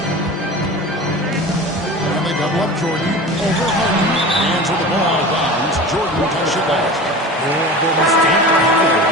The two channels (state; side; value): normal; both; correlation 0.34